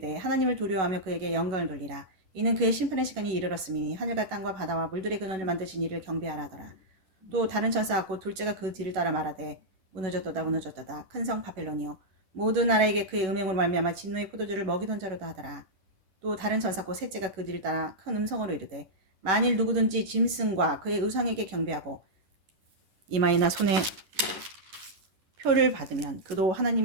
하나님을 두려워하며 그에게 영광을 돌리라. 이는 그의 심판의 시간이 이르렀으니 하늘과 땅과 바다와 물들의 근원을 만드신 이를 경배하라 하더라. 또 다른 천사 곧 둘째가 그 뒤를 따라 말하되 무너졌도다 무너졌도다 큰 성 바벨론이여 모든 나라에게 그의 음행으로 말미암아 진노의 포도주를 먹이던 자로다 하더라. 또 다른 천사 곧 셋째가 그 뒤를 따라 큰 음성으로 이르되 만일 누구든지 짐승과 그의 우상에게 경배하고 이마에나 손에 표를 받으면 그도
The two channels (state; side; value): late; left; 11 ms